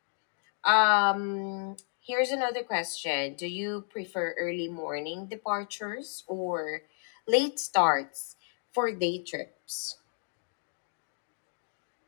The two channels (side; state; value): right; silent; 57 dB below the other